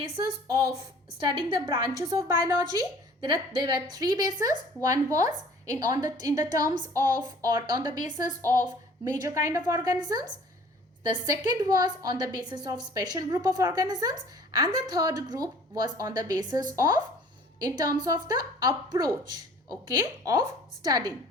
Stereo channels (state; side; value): normal; both; correlation 0.51